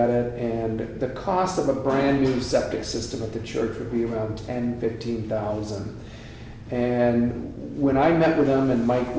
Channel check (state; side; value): identical; both; correlation 1.00